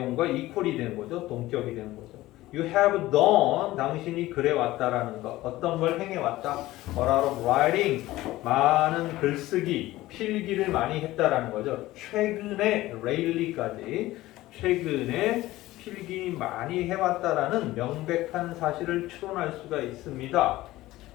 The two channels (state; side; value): quieter; right; 17.0 dB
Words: equal이 되는 거죠. 동격이 되는 거죠. You have done, 당신이 그래 왔다라는 것. 어떤 걸 행해 왔다. A lot of writing, 많은 글쓰기, 필기를 많이 했다라는 거죠. 최근에 lately까지 최근에 필기 많이 해왔다라는 명백한 사실을 추론할 수가 있습니다.